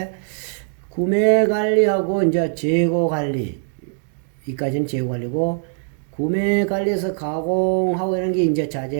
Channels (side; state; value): left; silent; digital silence